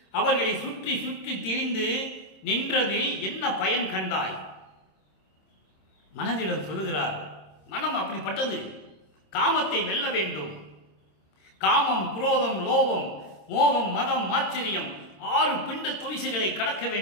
அவர்களை சுற்றி சுற்றி திரிந்து நின்றதில் என்ன பயன் கண்டாய். மனதிடம் சொல்லுகிறார், மனம் அப்படிப்பட்டது, காமத்தை வெல்ல வேண்டும். காமம், குரோதம், லோபம், மோகம், மதம், ஆச்சரியம் 6 பிண்ட துரிசுகளை கடக்க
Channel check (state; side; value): late; right; 26 ms